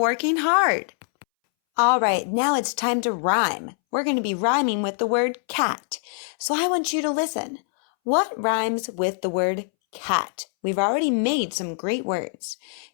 hard. All right, now it's time to rhyme. We're going to be rhyming with the word cat. So I want you to listen. What rhymes with the word cat? We've already made some great words.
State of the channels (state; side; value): silent; right; 63 dB below the other